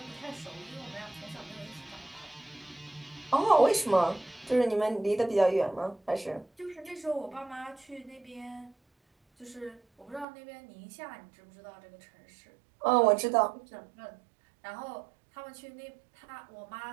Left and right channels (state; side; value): drops out; left; at 10.2 s